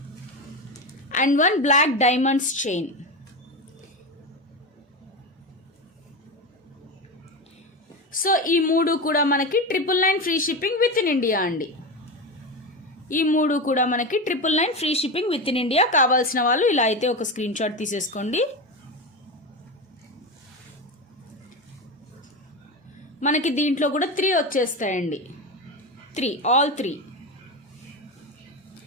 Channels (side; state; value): both; normal; correlation 0.19